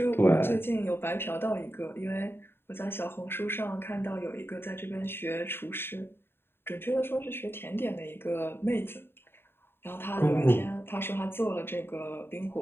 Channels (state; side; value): late; right; 0.11 ms